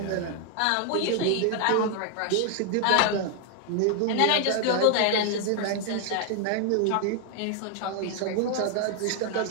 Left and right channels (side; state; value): both; different; correlation 0.00